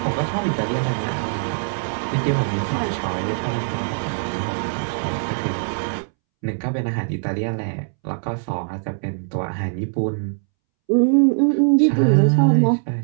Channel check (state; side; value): silent; left; 64 dB below the other